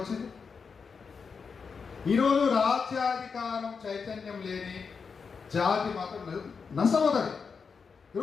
ఈరోజు రాజ్యాధికారం చైతన్యం లేని జాతి మాత్రం నష్టమవుతుంది.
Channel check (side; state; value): right; quieter; 5.5 dB